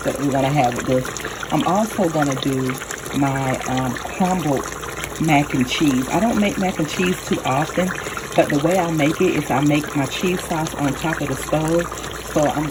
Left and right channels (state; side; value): identical; both; correlation 1.00